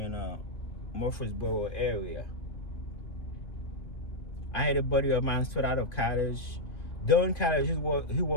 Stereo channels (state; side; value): late; right; 2.2 ms